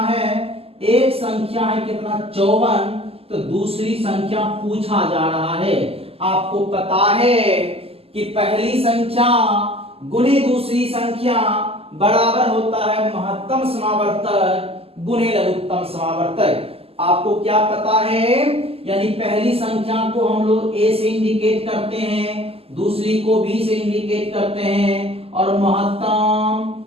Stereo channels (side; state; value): left; late; 0.29 ms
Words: है, एक संख्या है कितना 54, तो दूसरी संख्या पूछा जा रहा है। आपको पता है कि पहली संख्या गुणे दूसरी संख्या बराबर होता है महत्तम समावर्तक गुणे लघुत्तम समावर्तक। आपको क्या पता है, यानी पहली संख्या को हम लोग ए से इंडिकेट करते हैं, दूसरी को बी से इंडिकेट करते हैं, और महत्तम